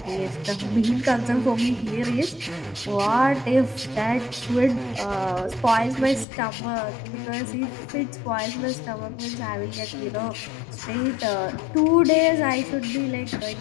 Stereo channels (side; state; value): right; drops out; at 6.2 s